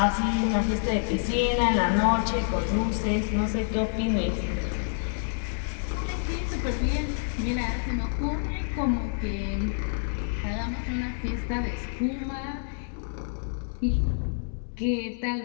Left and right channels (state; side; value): silent; right; digital silence